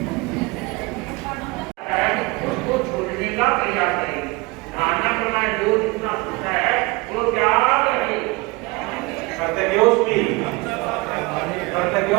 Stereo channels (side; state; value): left; quieter; 25.0 dB